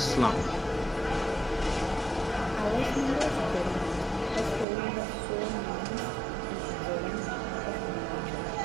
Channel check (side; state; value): left; drops out; at 4.7 s